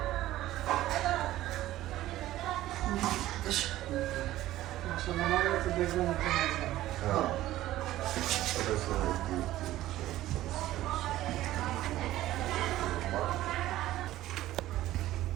আসলে আমার তো দেখলাম এটা মাজা।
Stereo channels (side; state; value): left; quieter; 14.9 dB